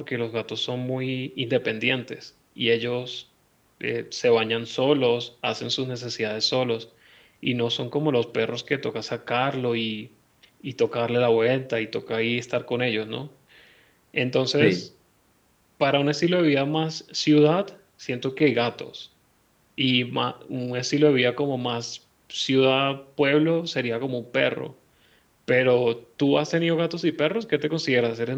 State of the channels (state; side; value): identical; both; correlation 1.00